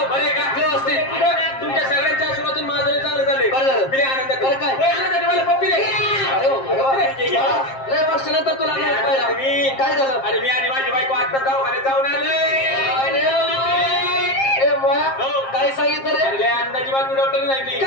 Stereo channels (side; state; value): right; late; 7.5 ms